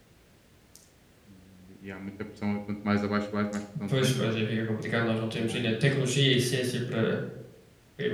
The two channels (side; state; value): both; identical; correlation 1.00